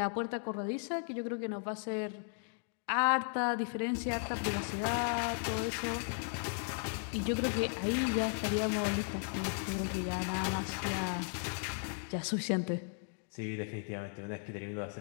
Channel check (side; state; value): right; silent; 54 dB below the other